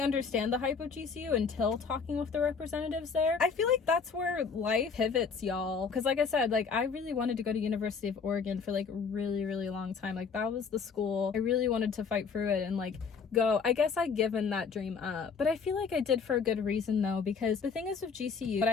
understand the hype of GCU until talking with the representatives there. I feel like that's where life pivots, y'all. Because like I said, like I really wanted to go to University of Oregon for like a really, really long time. Like that was the school I really wanted to fight through it and like go. I guess I'd given that dream up, but I feel like I did for a good reason though, because the thing is with GCU, what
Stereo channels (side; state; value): right; quieter; 5.6 dB